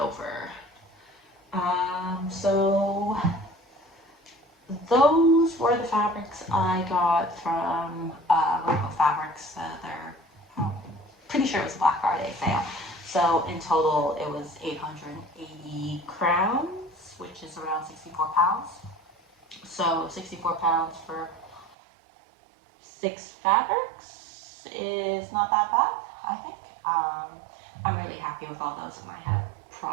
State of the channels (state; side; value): drops out; left; at 21.8 s